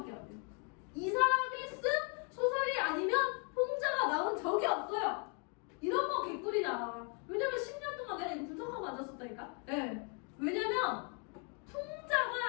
안 돼요. 이 사람이 쓴 소설이 아니면 풍자가 나온 적이 없어요. 이런 거 개꿀이잖아. 왜냐면 10년 동안 내가 이거 분석하고 앉았었다니까. 네. 왜냐면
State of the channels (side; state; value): right; quieter; 38.3 dB